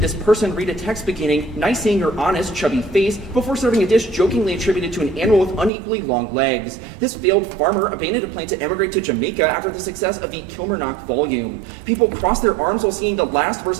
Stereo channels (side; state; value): left; drops out; at 5.7 s